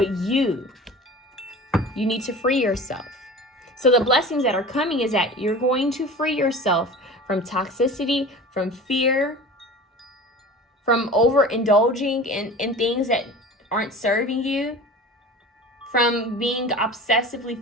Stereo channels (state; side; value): normal; both; correlation 0.37